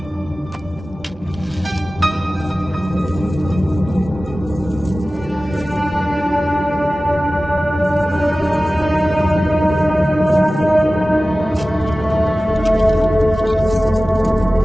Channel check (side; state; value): both; normal; correlation 0.96